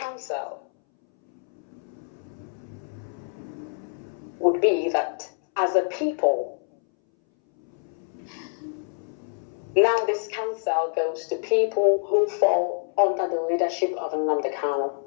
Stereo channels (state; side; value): silent; right; 61 dB below the other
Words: would be that as a people, Now this counsel goes to people who fall under the leadership of Nnamdi